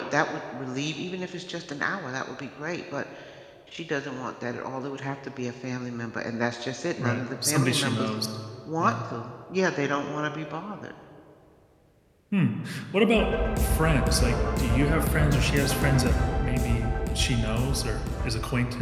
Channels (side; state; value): both; identical; correlation 1.00